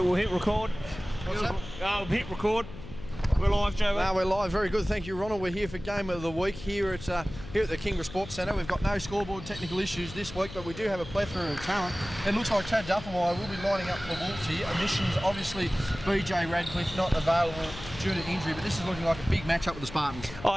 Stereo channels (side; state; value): left; noise; hum, 13 dB below the sound